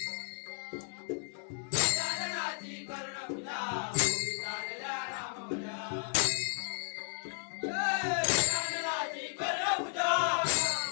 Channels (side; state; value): right; silent; 55 dB below the other